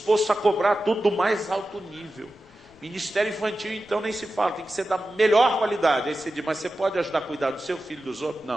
a cobrar tudo do mais alto nível. Ministério infantil, então, nem se fala. Tem que ser da melhor qualidade. Aí você diz, mas você pode ajudar a cuidar do seu filho e dos outros?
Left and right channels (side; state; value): left; noise; rumble, 29 dB below the sound